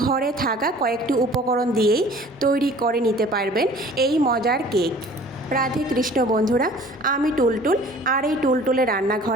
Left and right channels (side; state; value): both; normal; correlation 0.49